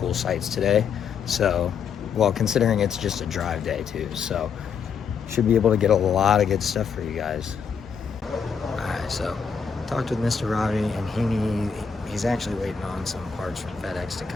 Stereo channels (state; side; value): quieter; right; 6.4 dB